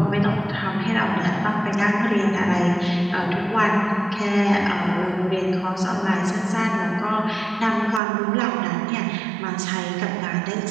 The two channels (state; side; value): drops out; left; at 8.0 s